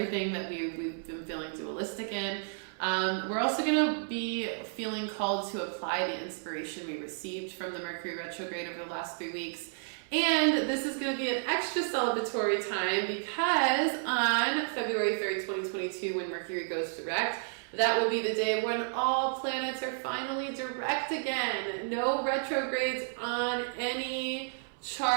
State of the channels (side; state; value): left; silent; 57 dB below the other